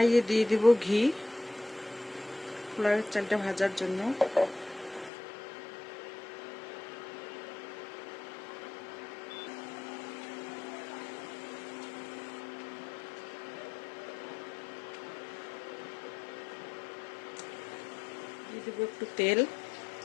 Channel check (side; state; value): right; drops out; at 5.1 s